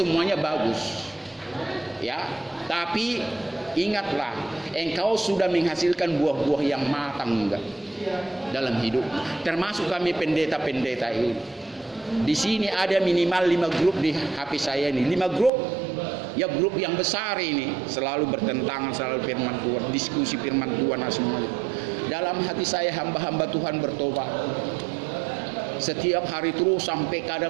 bagus. Ya, tapi ingatlah, engkau sudah menghasilkan buah-buah yang matang enggak dalam hidup. Termasuk kami pendeta-pendeta ini. Di sini ada minimal 5 grup di HP saya ini. 5 grup, ya grup yang besar ini, selalu bertentangan, selalu firman Tuhan, diskusi firman Tuhan semuanya. Dalam hati saya hamba-hamba Tuhan bertobat. Setiap hari terus sampai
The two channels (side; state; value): left; drops out; at 15.5 s